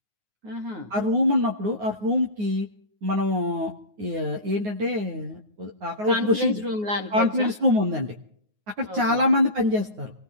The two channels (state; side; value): late; left; 9.5 ms